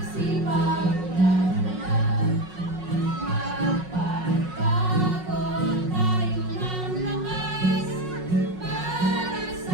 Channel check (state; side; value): late; left; 5.5 ms